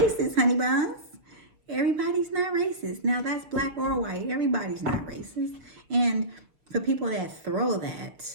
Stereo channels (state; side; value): late; left; 6.1 ms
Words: honey buns. Everybody's not racist. Now that's black or white. Everybody's not racist. And for people that throw